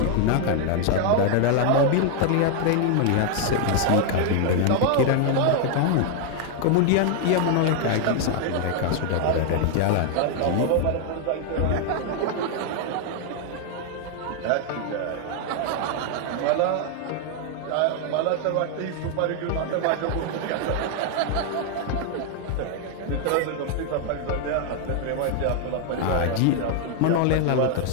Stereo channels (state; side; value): different; both; correlation 0.00